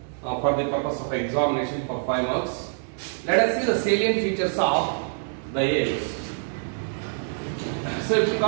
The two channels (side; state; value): left; silent; digital silence